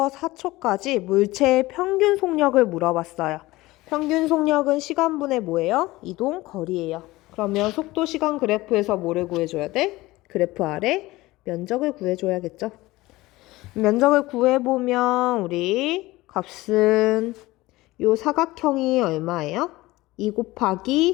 4초까지 물체의 평균 속력을 물어봤어요. 평균 속력은 시간분의 뭐예요? 이동 거리예요. 그러면 속도 시간 그래프에서 뭐를 구해줘야 돼? 그래프 아래 면적을 구해줘야겠죠. 면적을 구해보면 우리 값은 요 사각형이 얼마예요? 2 곱하기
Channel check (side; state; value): right; quieter; 19.3 dB